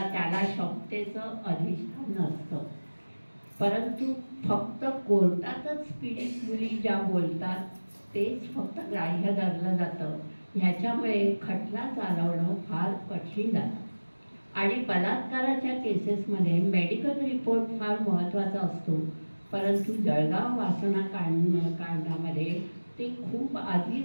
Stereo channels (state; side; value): inverted; both; correlation -1.00